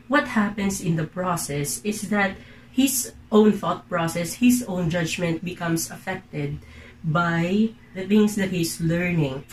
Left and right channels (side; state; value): both; identical; correlation 1.00